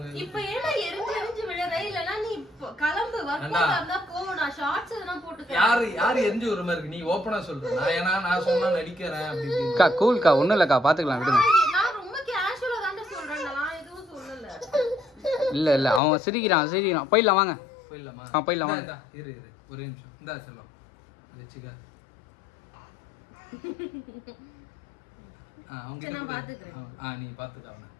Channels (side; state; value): right; drops out; at 16.0 s